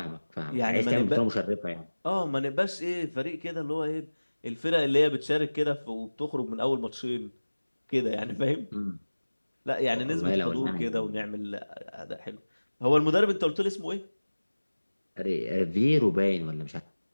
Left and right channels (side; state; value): both; inverted; correlation -1.00